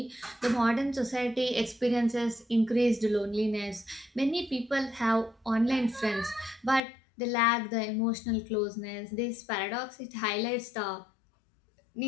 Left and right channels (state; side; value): drops out; right; at 6.8 s